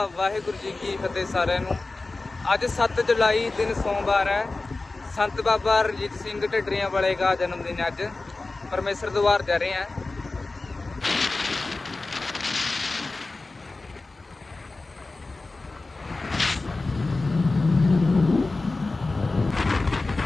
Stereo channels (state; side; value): quieter; right; 3.4 dB